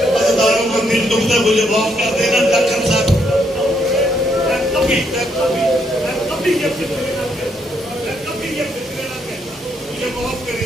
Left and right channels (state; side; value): normal; both; correlation 0.74